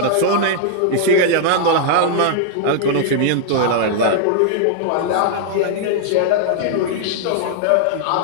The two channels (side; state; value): both; different; correlation -0.01